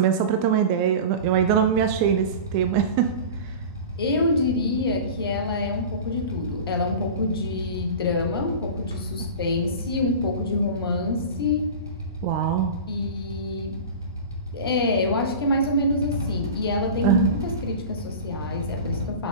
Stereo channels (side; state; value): both; inverted; correlation -0.32